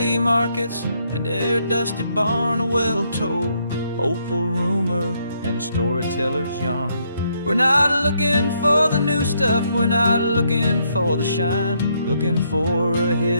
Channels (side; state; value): both; inverted; correlation -0.73